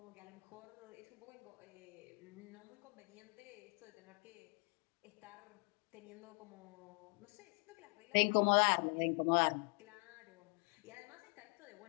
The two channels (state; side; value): quieter; right; 39.6 dB